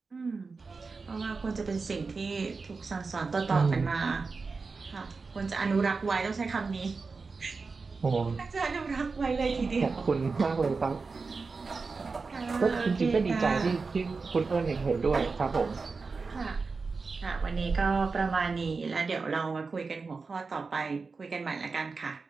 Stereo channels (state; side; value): quieter; left; 4.4 dB